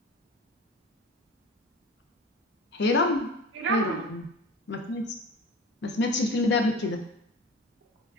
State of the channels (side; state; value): both; normal; correlation 0.36